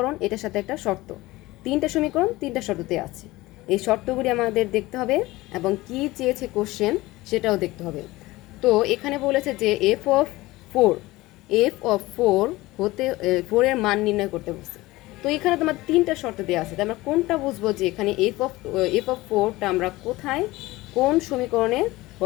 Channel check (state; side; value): quieter; right; 19.4 dB